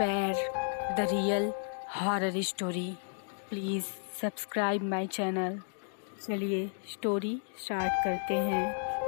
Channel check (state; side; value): silent; right; digital silence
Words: the real horror story. Please subscribe my channel. चलिए स्टोरी स्टार्ट करते